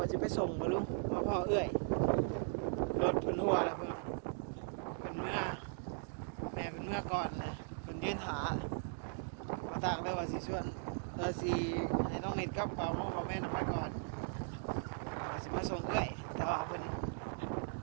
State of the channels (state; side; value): silent; left; digital silence